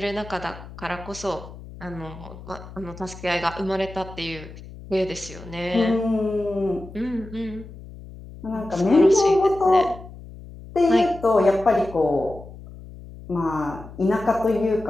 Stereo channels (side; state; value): left; noise; hum, 16 dB below the sound